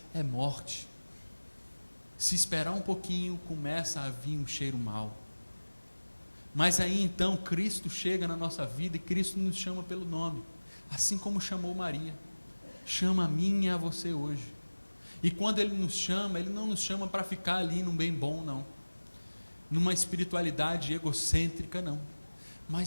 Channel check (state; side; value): inverted; both; correlation -1.00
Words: é morte. Se esperar um pouquinho, começa a vir um cheiro mau. Mas aí então Cristo chega na nossa vida e Cristo nos chama pelo nome, assim como chamou Maria. Chama a mim e a você hoje. E quando Ele nos chama, Ele não nos chama para ficar ali num bem bom, não. Numa espiritualidade egocêntrica, não.